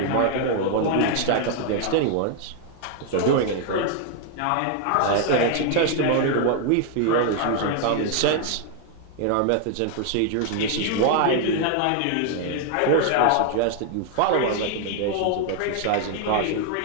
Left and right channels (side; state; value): both; different; correlation 0.00